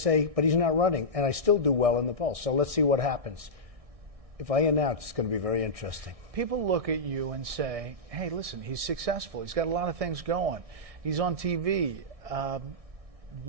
but he's not running. And I still do well in the polls. So let's see what happens. If I announce, it's going to be very interesting. People look at you and say, hey, listen, he's successful. He's got a lot of things going. He's on TV.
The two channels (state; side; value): late; left; 1.6 ms